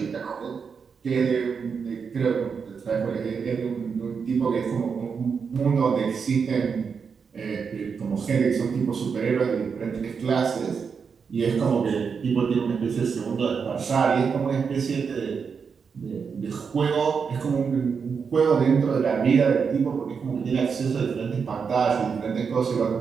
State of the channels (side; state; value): left; quieter; 6.0 dB